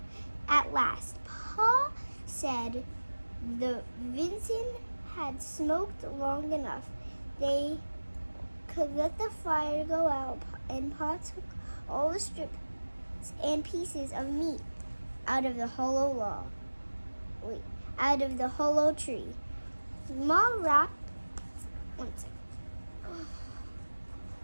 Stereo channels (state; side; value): inverted; both; correlation -1.00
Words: At last, Pa said the venison had smoked long enough. They could let the fire go out, and Pa took all the strips and pieces of meat out of the hollow tree. Ma wrapped 1 second.